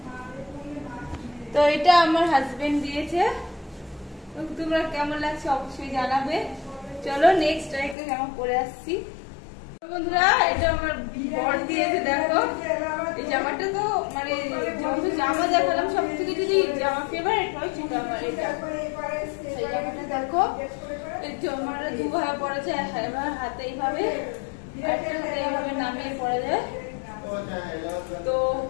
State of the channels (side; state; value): right; drops out; at 8.0 s